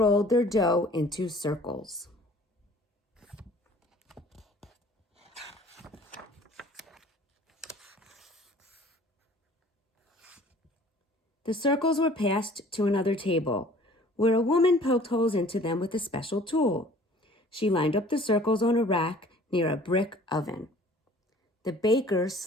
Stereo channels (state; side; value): normal; both; correlation 0.50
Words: their dough into circles. The circles were passed to another table, where a woman poked holes into them with a special tool. She lined up the circles on a rack near a brick oven. The baker